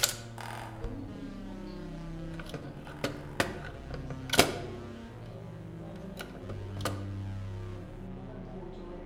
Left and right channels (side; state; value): both; identical; correlation 1.00